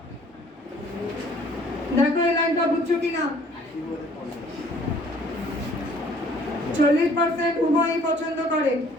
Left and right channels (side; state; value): both; normal; correlation 0.57